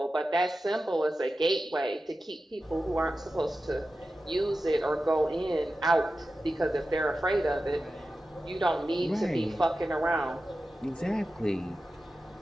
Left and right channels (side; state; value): both; normal; correlation 0.93